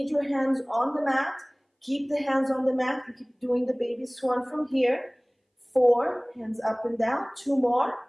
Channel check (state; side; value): identical; both; correlation 1.00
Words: your hands on the mat, keep the hands on the mat and keep doing the baby swan from here. 4, hands up and down, 2